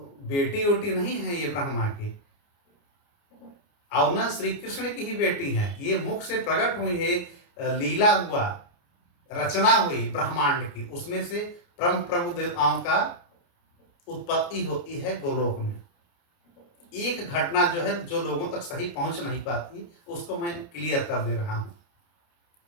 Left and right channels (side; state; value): right; late; 29 ms